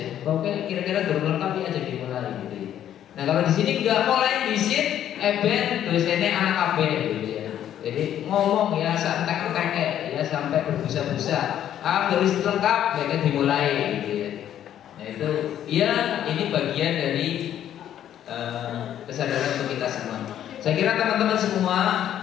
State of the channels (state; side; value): quieter; right; 10.8 dB